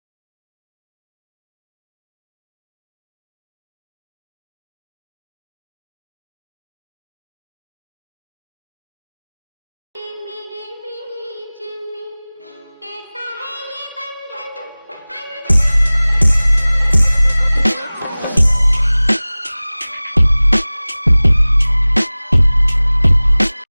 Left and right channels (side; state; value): both; inverted; correlation -0.99